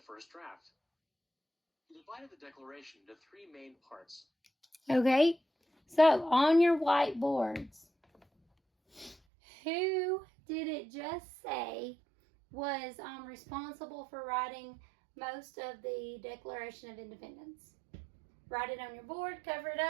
first draft. He divided the Declaration into three main parts. Okay, so on your whiteboards, who did it just say was responsible for writing most of the Declaration of Independence? Write it on your board, cover it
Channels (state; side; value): drops out; left; at 9.2 s